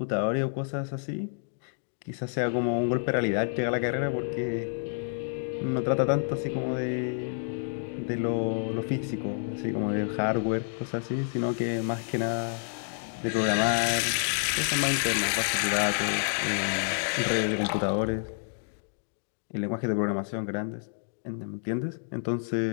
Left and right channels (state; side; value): silent; right; digital silence